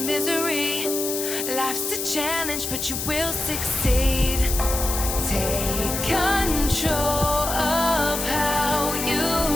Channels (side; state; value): left; noise; hiss, 3 dB below the sound